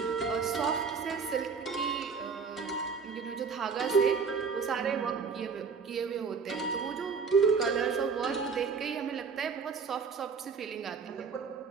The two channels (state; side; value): quieter; left; 5.5 dB